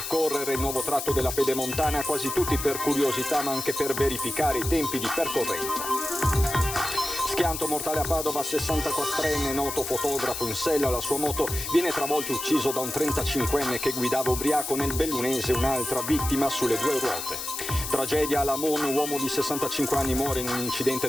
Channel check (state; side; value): noise; left; hiss, 6 dB below the sound